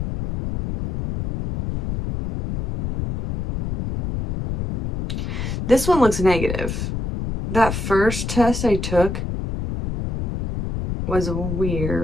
This one looks negative. That first test I took was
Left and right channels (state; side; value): noise; left; rumble, 4 dB below the sound